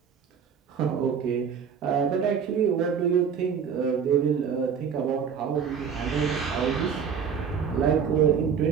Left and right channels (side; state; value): left; quieter; 7.0 dB